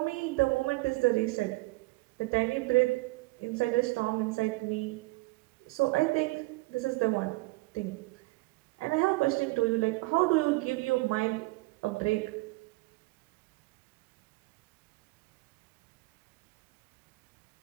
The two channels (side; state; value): left; quieter; 23.5 dB